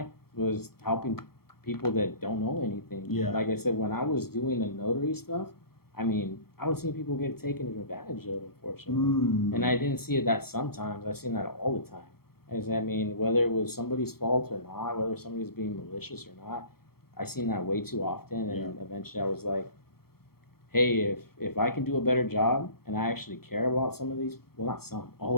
was helping people that don't know anything. Yeah. Like I said, when I was doing the notary stuff, I mean, I was seeing people get taken advantage of, unfortunately. And I didn't see it that sometimes. I seen that all the time. I mean, whether it was somebody's fault or not, whether somebody's being malicious or not, I seen that way too often. And eventually I was like, hey, if I can do a better job and I actually care about some of these, well, not some,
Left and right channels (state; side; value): late; right; 0.94 ms